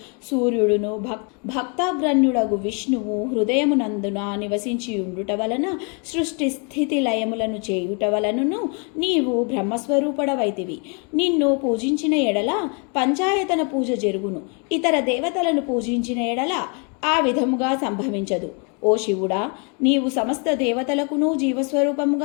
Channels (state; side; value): quieter; right; 36.4 dB